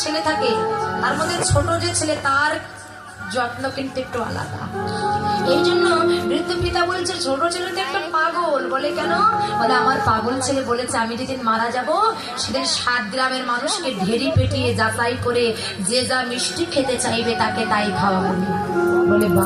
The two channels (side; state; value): both; identical; correlation 1.00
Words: ছেলে থাকে তার মধ্যে ছোট যে ছেলে তার যত্ন কিন্তু একটু আলাদা। এই জন্য বৃদ্ধ পিতা বলছে ছোট ছেলে তো একটা পাগল। বলে কেন? বলে আমার পাগল ছেলে বলেছে আমি যেদিন মারা যাব সেদিন 7 গ্রামের মানুষকে ঢেরি পেটিয়ে যাচাই করে যে যা মিষ্টি খেতে চাইবে তাকে তাই খাওয়াবো। বলে